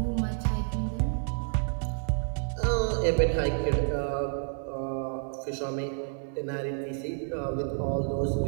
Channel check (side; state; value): left; silent; 58 dB below the other